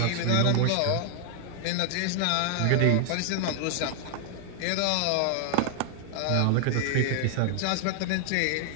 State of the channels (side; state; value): both; different; correlation 0.00